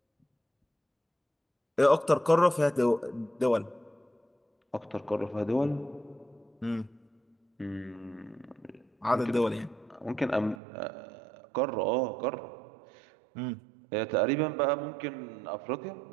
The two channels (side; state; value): left; drops out; at 10.6 s